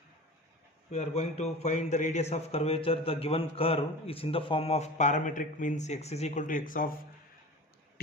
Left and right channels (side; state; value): both; normal; correlation 0.35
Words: we are going to find the radius of curvature. The given curve is in the form of parametric, means x is equal to x of